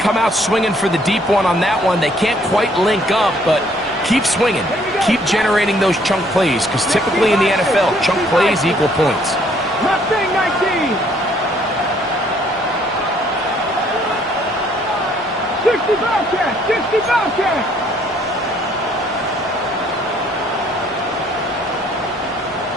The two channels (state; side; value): normal; both; correlation 0.63